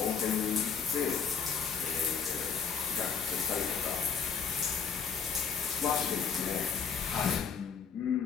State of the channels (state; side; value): quieter; right; 6.4 dB